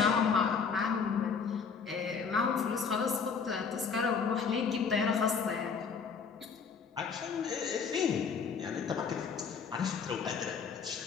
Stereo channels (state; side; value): quieter; right; 5.8 dB